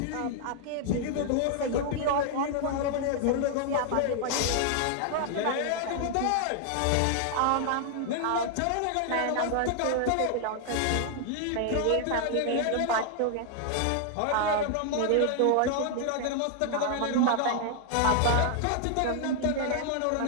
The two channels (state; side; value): different; both; correlation 0.00